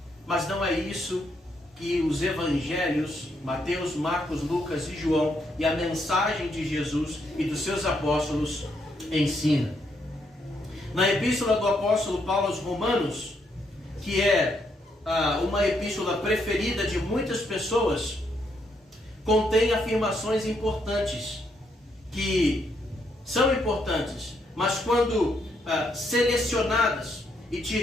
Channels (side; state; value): both; normal; correlation 0.76